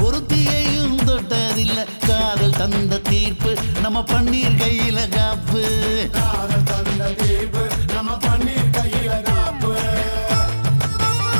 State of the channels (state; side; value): inverted; both; correlation -1.00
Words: ஒருத்தியையும் தொட்டதில்ல காதல் தந்த தீர்ப்பு நம்ம பன்னீர் கையில காப்பு காதல் தந்த தீர்ப்பு நம்ம பன்னீர் கையில காப்பு